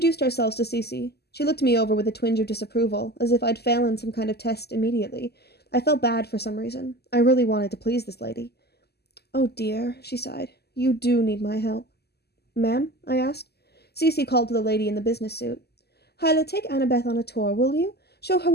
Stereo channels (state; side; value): late; right; 0.47 ms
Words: ourselves to Cece. She looked me over with a twinge of disapproval, as if I'd failed in some kind of test immediately. I felt bad for some reason. I really wanted to please this lady. "Oh dear," she sighed. "You do need my help." "Ma'am?" I asked. Cece called to the lady in the business suit. "Hyla, take Annabeth on a tour, will you? Show her